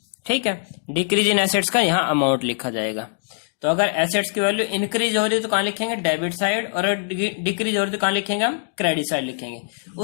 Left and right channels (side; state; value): right; silent; digital silence